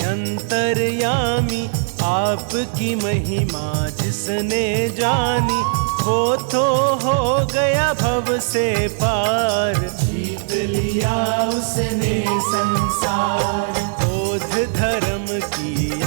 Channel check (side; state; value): left; silent; digital silence